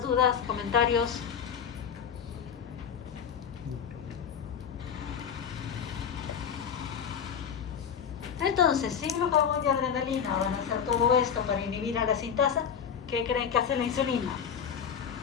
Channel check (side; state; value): right; quieter; 7.5 dB